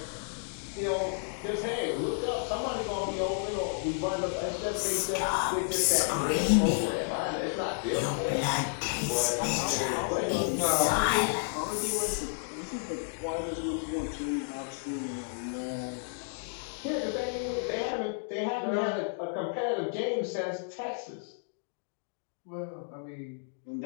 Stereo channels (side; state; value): right; silent; digital silence